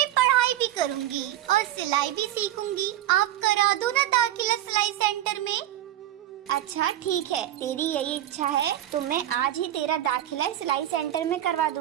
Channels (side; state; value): left; quieter; 12.8 dB